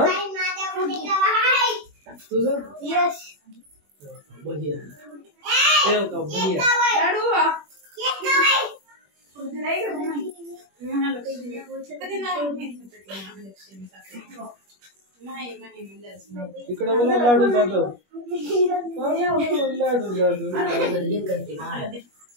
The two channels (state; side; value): late; left; 21 ms